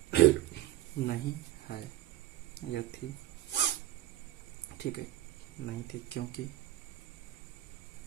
नहीं है या थी। ठीक है, नहीं थी क्योंकि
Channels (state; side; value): quieter; left; 14.9 dB